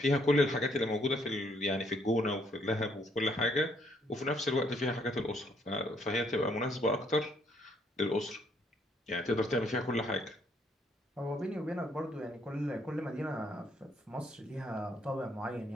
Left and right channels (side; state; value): both; normal; correlation 0.69